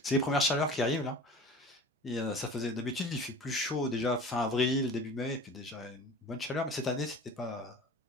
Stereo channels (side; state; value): both; normal; correlation 0.40